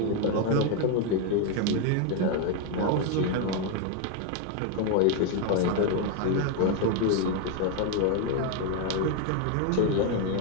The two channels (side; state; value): both; different; correlation 0.01